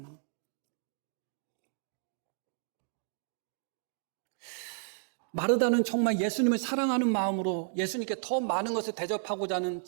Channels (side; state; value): left; silent; digital silence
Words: 마르다는 정말 예수님을 사랑하는 마음으로 예수님께 더 많은 것을 대접하고자 하는